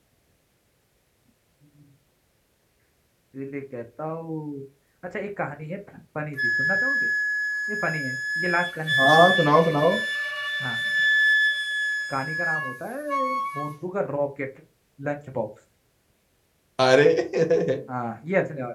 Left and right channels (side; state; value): both; identical; correlation 1.00